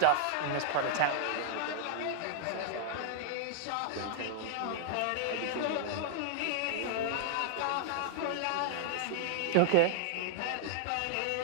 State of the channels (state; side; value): different; both; correlation -0.01